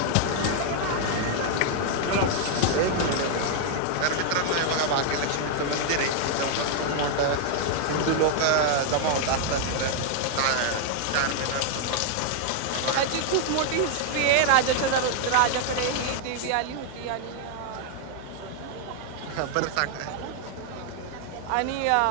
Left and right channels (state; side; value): different; both; correlation 0.00